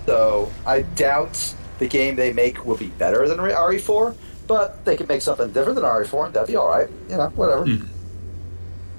So, I doubt the game they make will be better than RE4, but they could make something different than RE4, and that'd be alright. You know, whatever.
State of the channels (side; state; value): both; inverted; correlation -1.00